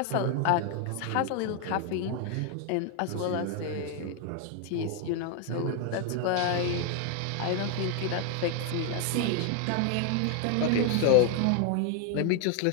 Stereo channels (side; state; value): both; different; correlation 0.01